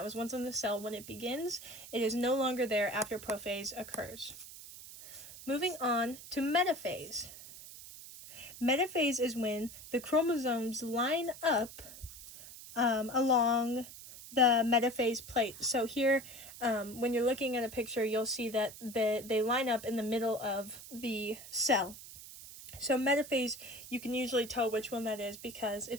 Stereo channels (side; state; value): right; noise; hiss, 15 dB below the sound